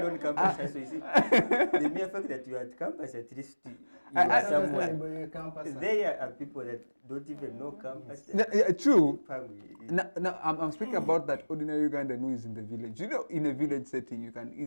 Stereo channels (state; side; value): inverted; both; correlation -1.00